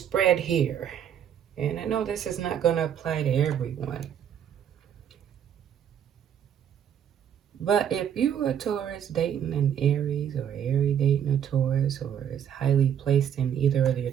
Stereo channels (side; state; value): left; quieter; 9.1 dB